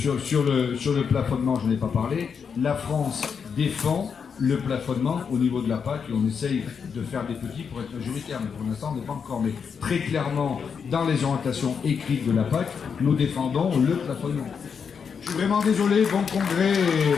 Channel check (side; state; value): right; quieter; 6.4 dB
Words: Sur le plafonnement, je n'ai pas parlé. La France défend le plafonnement au niveau de la PAC et on essaye de faire des petits pour être majoritaire, mais pour l'instant on n'est pas encore. Mais très clairement, dans les orientations écrites de la PAC, nous défendons le plafonnement. suis vraiment désolé. Bon congrès et